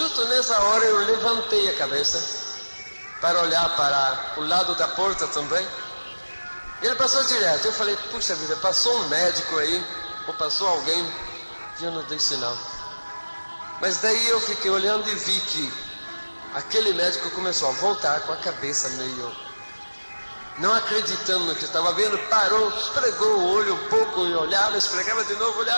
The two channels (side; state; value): both; inverted; correlation -1.00